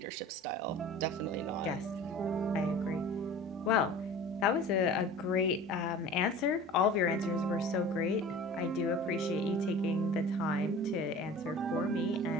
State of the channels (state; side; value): normal; both; correlation 0.40